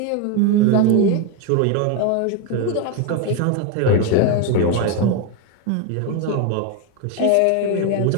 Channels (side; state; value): both; different; correlation 0.02